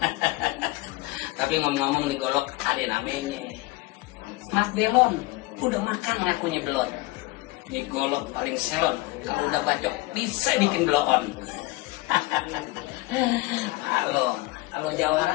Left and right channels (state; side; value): quieter; right; 20.5 dB